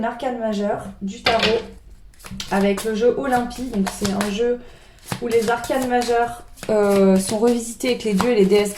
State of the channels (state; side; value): identical; both; correlation 1.00